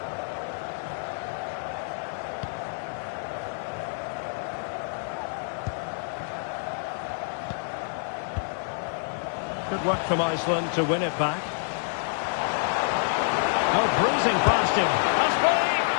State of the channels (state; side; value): silent; right; digital silence